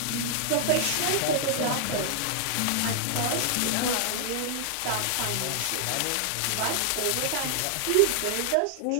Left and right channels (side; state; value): both; different; correlation -0.01